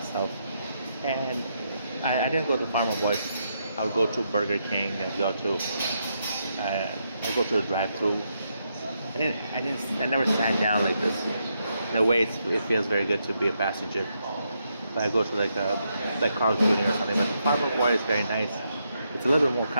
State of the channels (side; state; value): both; inverted; correlation -0.80